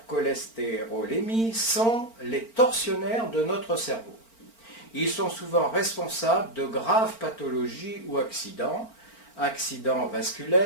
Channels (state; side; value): late; right; 4.4 ms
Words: sont les tortionnaires de notre cerveau. Ils sont souvent responsables de graves pathologies ou accidents